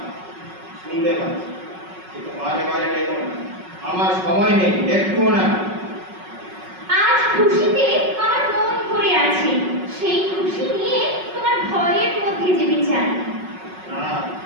শুনতে পাচ্ছি, কিন্তু বারে বারে ডেকো না। আমার সময় নেই, একটুও না। আজ খুশিতে আমার মন ভরে আছে। সেই খুশি নিয়ে তোমার ভয়ের মধ্যে যেতে চাই। না,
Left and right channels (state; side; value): late; left; 5.4 ms